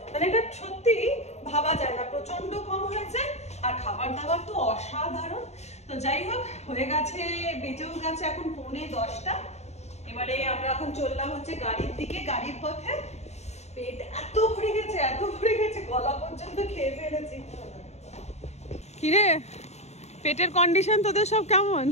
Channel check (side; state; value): right; late; 0.32 ms